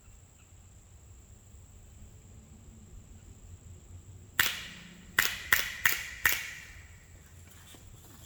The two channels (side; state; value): both; identical; correlation 1.00